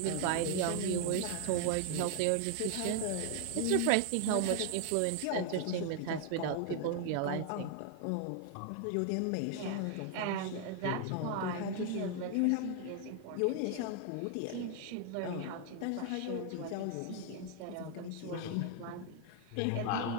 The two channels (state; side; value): different; both; correlation 0.00